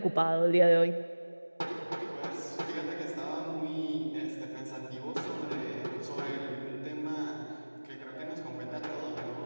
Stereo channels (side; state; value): both; inverted; correlation -1.00